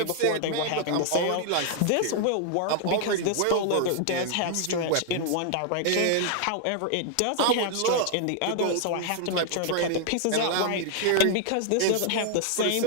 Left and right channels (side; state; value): both; different; correlation 0.00